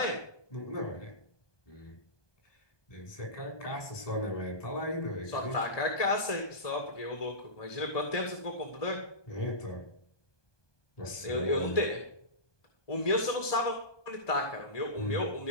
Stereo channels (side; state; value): right; late; 1.2 ms